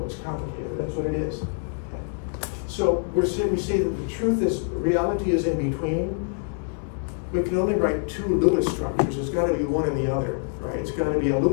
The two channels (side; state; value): right; silent; 61 dB below the other